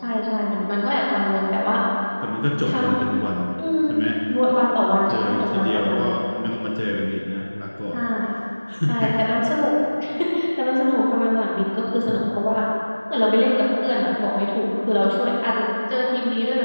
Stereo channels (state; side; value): inverted; both; correlation -1.00